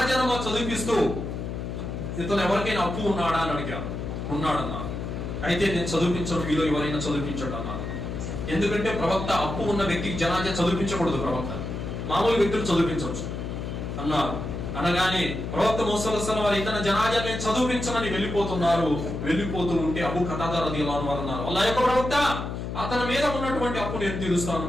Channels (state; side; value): noise; left; hum, 5 dB below the sound